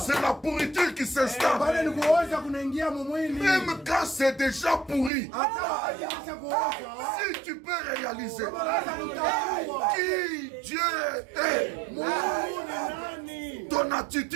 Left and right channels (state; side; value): drops out; left; at 5.1 s